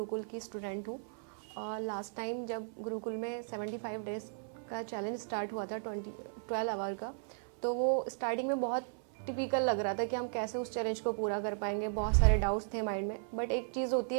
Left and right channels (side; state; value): left; silent; 54 dB below the other